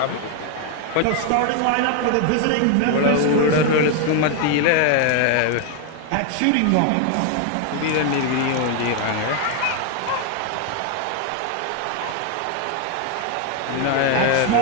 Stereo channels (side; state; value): both; different; correlation 0.00